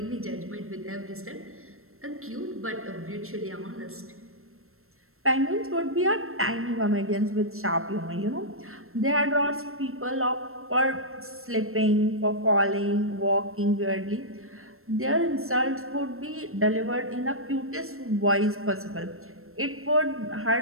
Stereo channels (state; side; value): late; left; 0.62 ms